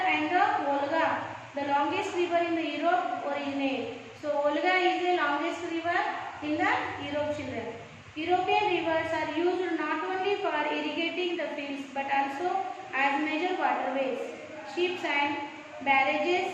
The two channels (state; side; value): identical; both; correlation 1.00